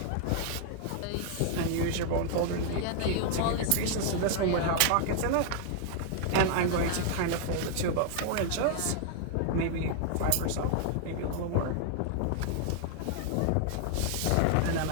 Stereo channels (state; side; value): different; both; correlation 0.00